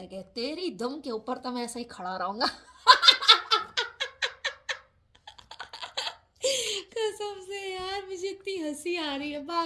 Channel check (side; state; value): both; identical; correlation 1.00